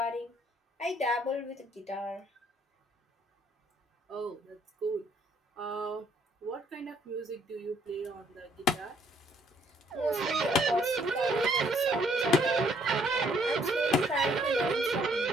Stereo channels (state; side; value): normal; both; correlation 0.65